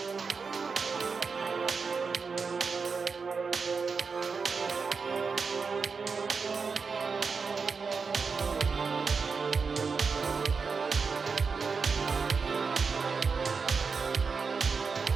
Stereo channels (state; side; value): quieter; left; 5.1 dB